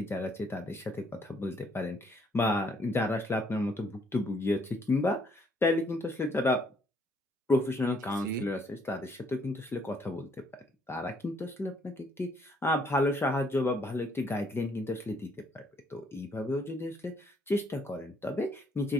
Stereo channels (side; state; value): both; normal; correlation 0.67